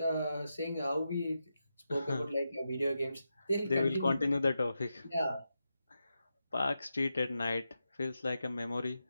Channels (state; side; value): inverted; both; correlation -0.88